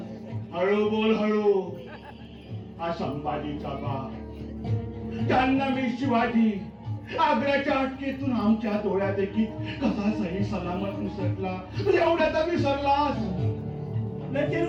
हळू बोल, हळू. हा संभाजीचा बाप, जाहन्नमी शिवाजी आग्र्याच्या अटकेतून आमच्या डोळ्यात देखील कसा सही सलामत विसरला. एवढ्यात विसरलास. लेकिन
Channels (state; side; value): identical; both; correlation 1.00